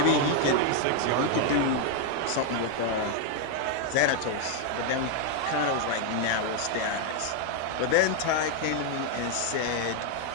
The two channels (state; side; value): different; both; correlation 0.00